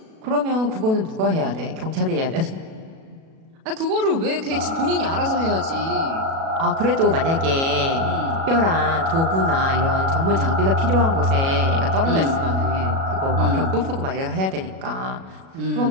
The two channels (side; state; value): left; late; 37 ms